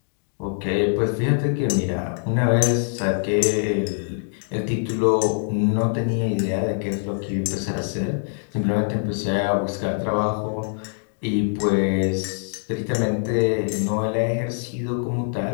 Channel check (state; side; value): silent; right; digital silence